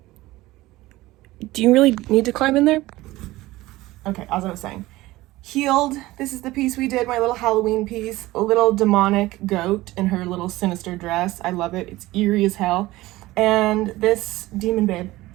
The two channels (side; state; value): left; quieter; 18.2 dB